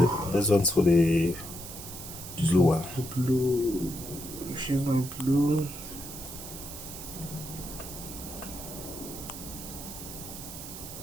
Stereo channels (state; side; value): noise; right; hiss, 11 dB below the sound